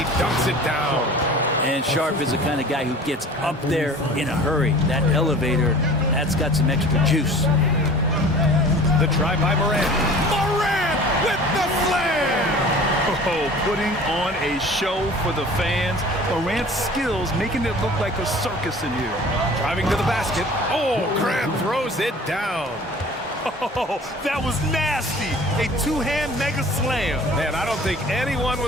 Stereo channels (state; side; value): normal; both; correlation 0.44